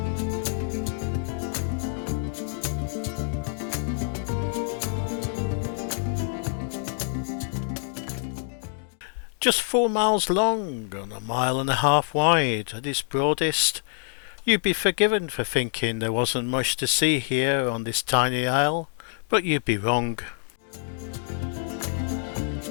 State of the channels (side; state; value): right; silent; digital silence